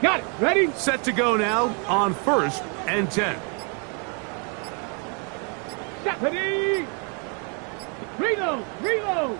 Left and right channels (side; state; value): left; quieter; 37.0 dB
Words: Got it. Ready? Set to go now on 1st and 10. Stop. Ready? Reload. Reload.